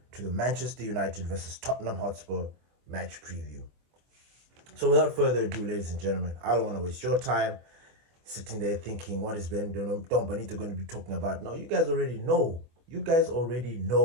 to the Manchester United versus Tottenham Hotspur match preview. So, without further ado, ladies and gentlemen, I don't want to waste your time sitting there thinking, what is Don Benito going to be talking about? No, you guys already know. You guys already know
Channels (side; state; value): left; late; 24 ms